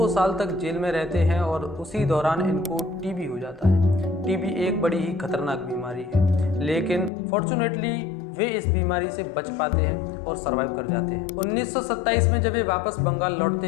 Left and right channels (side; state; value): right; drops out; at 7.1 s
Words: साल तक जेल में रहते हैं और उसी दौरान इनको टीबी हो जाता है। टीबी एक बड़ी ही खतरनाक बीमारी है, लेकिन फॉर्चुनेटली वे इस बीमारी से बच पाते हैं और सरवाइव कर जाते हैं। 1927 में जब वे वापस बंगाल लौटते